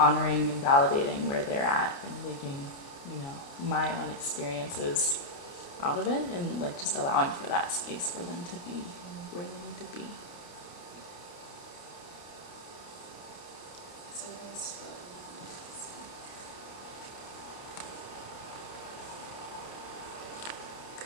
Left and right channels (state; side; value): late; right; 29 ms